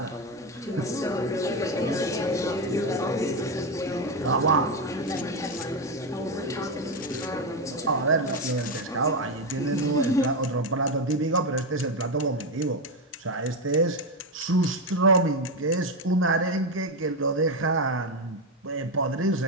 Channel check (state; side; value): normal; both; correlation 0.10